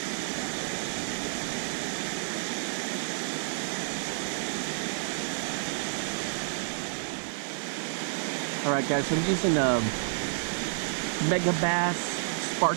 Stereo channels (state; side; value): silent; left; 58 dB below the other